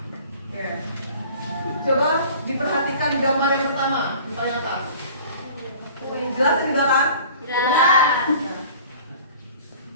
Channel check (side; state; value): both; inverted; correlation -0.46